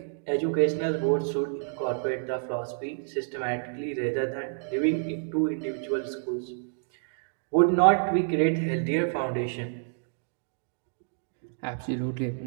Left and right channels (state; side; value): silent; left; digital silence